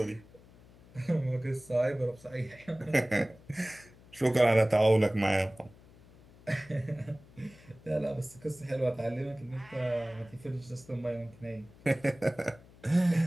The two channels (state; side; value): noise; left; hum, 24 dB below the sound